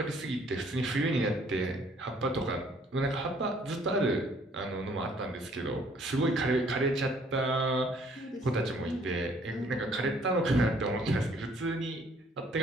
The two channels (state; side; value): normal; both; correlation 0.61